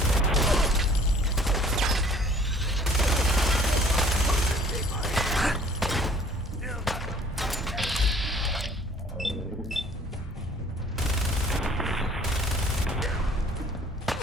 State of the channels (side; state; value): both; normal; correlation 0.54